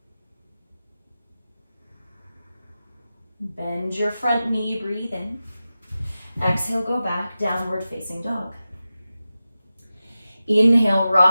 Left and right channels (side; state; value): both; inverted; correlation -0.94